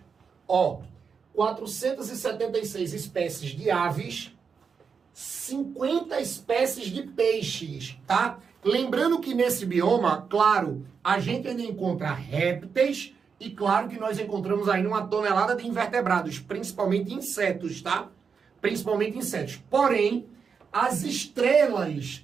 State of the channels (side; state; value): left; quieter; 6.0 dB